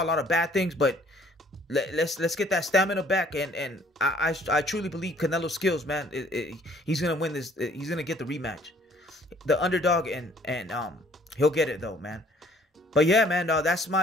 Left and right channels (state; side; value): normal; both; correlation 0.59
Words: a lot of bad things, but let's get that stamina back, and I truly believe Canelo's skills, man. He's gonna win this. He's gonna get the rematch, the underdog, and he'll get it though, man. But yeah, man, that's